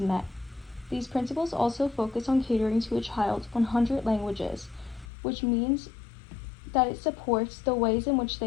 met. These principles also focus on catering to a child's 100 languages, which means that it supports the ways in which they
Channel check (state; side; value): drops out; right; at 5.1 s